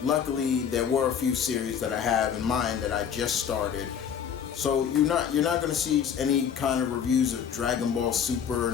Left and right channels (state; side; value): quieter; right; 7.9 dB